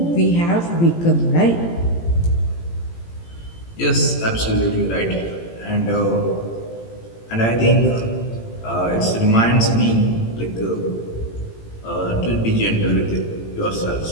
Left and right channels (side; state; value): right; late; 18 ms